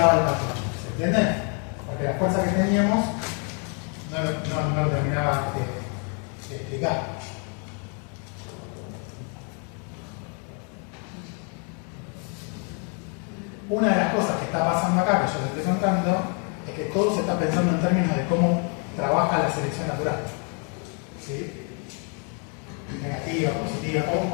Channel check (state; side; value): quieter; right; 38.6 dB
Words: el patrón? ¿Se entiende? Porque la fuerza que teníamos no lo terminaba de explicar. Una de las cosas que está pasando acá, que yo les estoy contando, es que todo se está pensando en términos de cómo trabaja la selección natural. ¿Sí? Negativa, positiva,